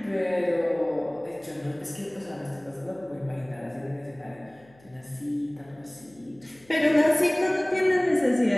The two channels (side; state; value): left; noise; hum, 28 dB below the sound